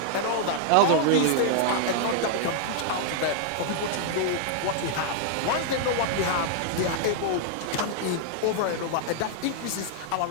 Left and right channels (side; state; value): both; different; correlation -0.01